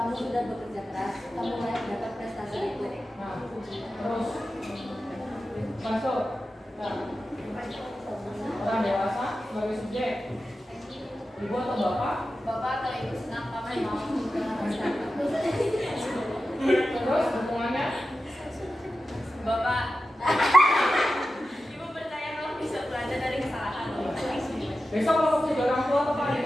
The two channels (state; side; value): normal; both; correlation 0.93